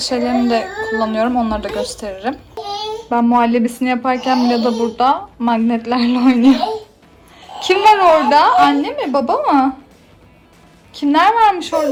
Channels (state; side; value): identical; both; correlation 1.00